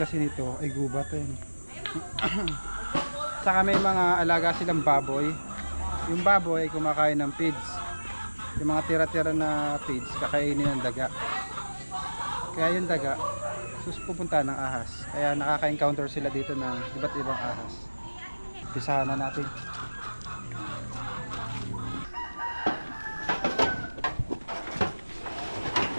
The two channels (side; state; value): both; inverted; correlation -1.00